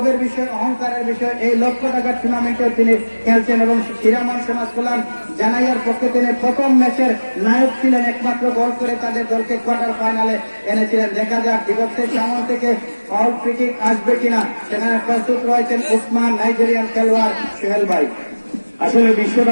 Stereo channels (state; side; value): inverted; both; correlation -1.00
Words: বিষয়, অহংকারের বিষয়, এই লক্ষ টাকার টুর্নামেন্টেও তিনি খেলছেন এবং হিরামন সমাজ কল্যাণ জানাইয়ার পক্ষে তিনি প্রথম ম্যাচের নায়ক ছিলেন, একমাত্র গোল করে তাদের দলকে কোয়ার্টার ফাইনালে এনেছিলেন। দেখা যাক দিবসের সামনে থেকে ফাউল ফ্রি কিক আসবে কিনা, সেখানে প্রস্তুত রয়েছেন উসমান নাইজেরিয়ান খেলোয়াড় সোহেল ভাই। আসলে